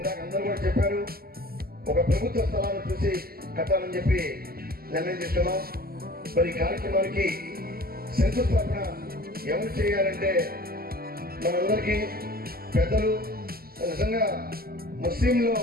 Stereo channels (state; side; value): late; left; 0.44 ms